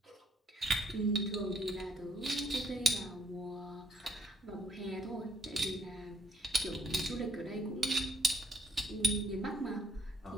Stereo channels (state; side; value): normal; both; correlation 0.66